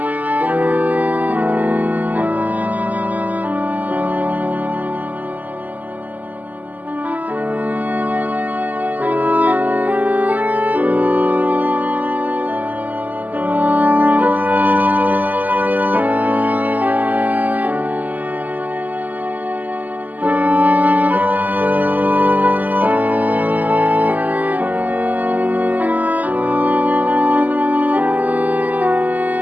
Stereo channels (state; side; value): late; left; 0.081 ms